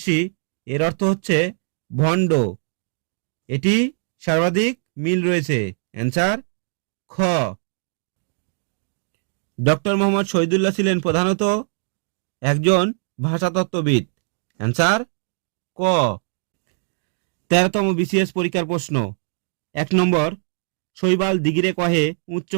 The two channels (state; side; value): silent; left; 64 dB below the other